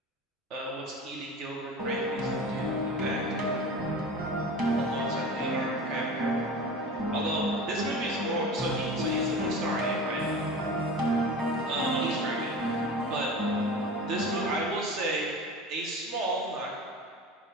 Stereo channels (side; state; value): both; normal; correlation 0.33